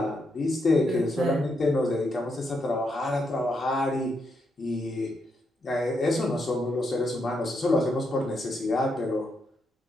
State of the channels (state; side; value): normal; both; correlation 0.80